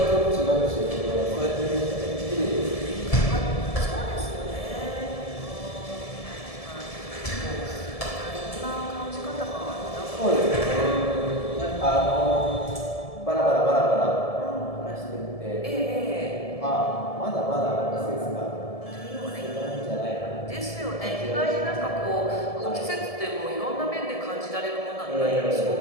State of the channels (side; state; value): right; late; 1.7 ms